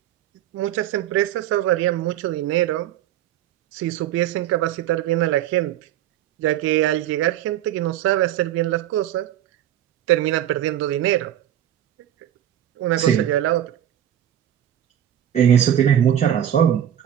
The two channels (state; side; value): quieter; left; 11.1 dB